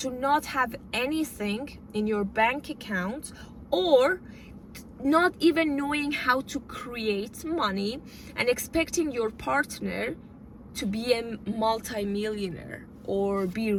not have anything in your bank account, or not even knowing how to create money, and expecting your partner to be a multi-millionaire or be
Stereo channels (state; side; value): identical; both; correlation 1.00